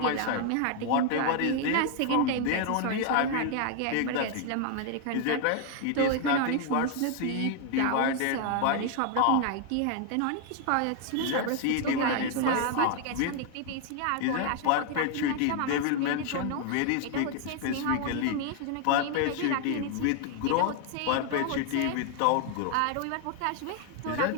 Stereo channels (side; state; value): both; different; correlation 0.00